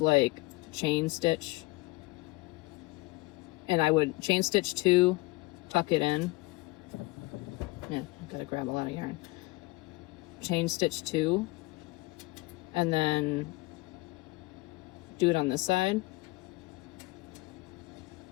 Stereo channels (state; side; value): quieter; right; 22.5 dB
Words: chain stitch. And I would chain stitch 2, tuck it in. Yeah, I gotta grab a lot of yarn. Chain stitch 2, and then do it on this side.